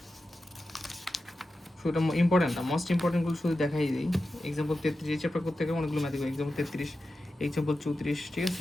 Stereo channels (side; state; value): both; normal; correlation 0.92